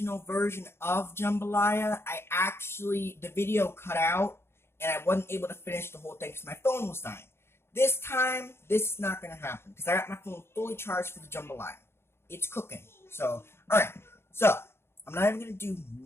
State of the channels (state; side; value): late; right; 0.12 ms